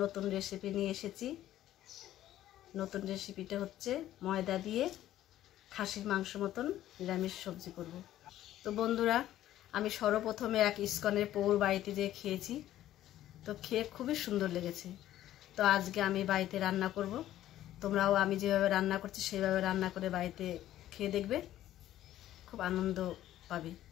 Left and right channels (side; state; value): right; quieter; 13.1 dB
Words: নতুন রেসিপি নিয়ে এসেছি। নতুন রেসিপিটা হচ্ছে ময়দা দিয়ে খাসির মাংস মতন নিরামিষ সবজি করব। তো বন্ধুরা, আমি সর্বপ্রথমে এক ইস্কনের পৌর বাড়িতে যেয়ে খেয়েছি, তো খেয়ে খুবই সুন্দর লেগেছে। তো আজকে আমি বাড়িতে রান্না করব। তোমরাও আমি যেভাবে রান্না করছি সেইভাবে রান্না করে বাড়িতে খেয়ে দেখবে, খুব আনন্দ পাবে।